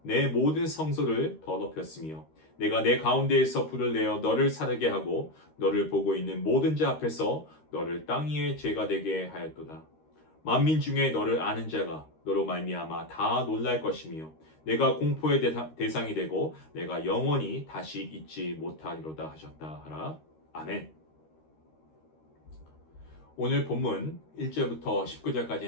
내 모든 성소를 더럽혔으며 내가 내 가운데에서 불을 내어 너를 사르게 하고 너를 보고 있는 모든 자 앞에서 너를 땅 위에 죄가 되게 하였도다. 만민 중에 너를 아는 자가 너로 말미암아 다 놀랄 것이며 내가 공포의 대상이 되고 내가 영원히 다시 잊지 못하리로다 하셨다 하라. 아멘. 오늘 본문 1절부터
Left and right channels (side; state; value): right; late; 13 ms